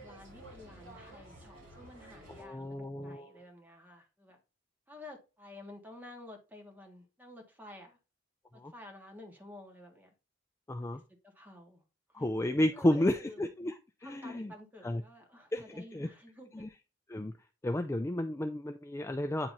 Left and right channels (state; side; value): normal; both; correlation 0.87